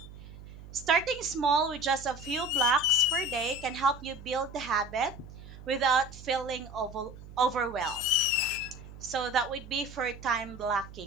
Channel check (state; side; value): noise; right; hum, 16 dB below the sound